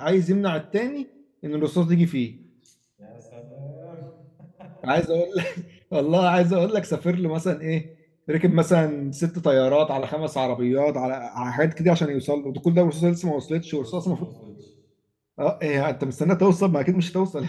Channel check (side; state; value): both; identical; correlation 1.00